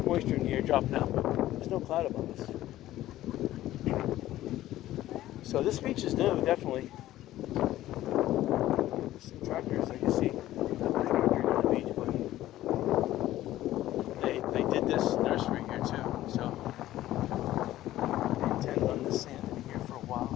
moisture in the air dropping out. There's no cloud above us. So this beach is new, definitely. Some tractors I can see. Not tractor on the beach, but they did this nursery here too. So they intend on this sand in here for a while.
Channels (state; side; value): quieter; right; 14.5 dB